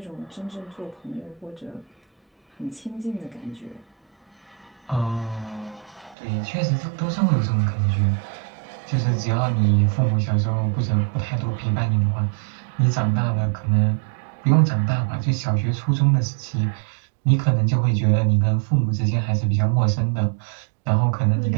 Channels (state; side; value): drops out; left; at 6.2 s